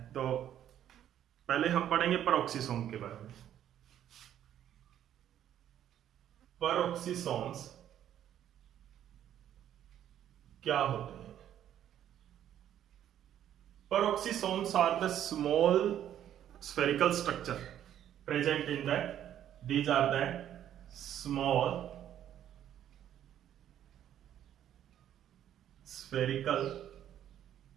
तो पहले हम पढ़ेंगे पेरोक्सिसोम के बारे में। पेरोक्सिसोम्स क्या होते हैं? Peroxisomes are the small spherical structure present in the, these are the small spherical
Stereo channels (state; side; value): quieter; left; 10.8 dB